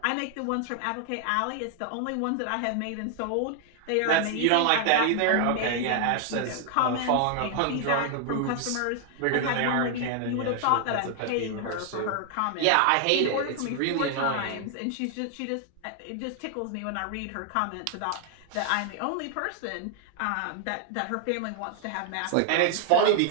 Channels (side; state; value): both; different; correlation 0.00